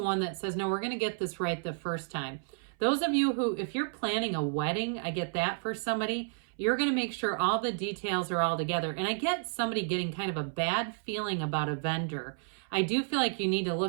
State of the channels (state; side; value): silent; left; 57 dB below the other